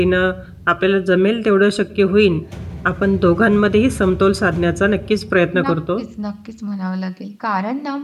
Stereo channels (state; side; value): identical; both; correlation 1.00